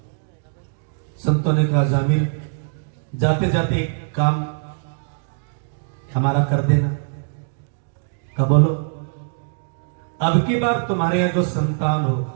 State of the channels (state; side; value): silent; left; digital silence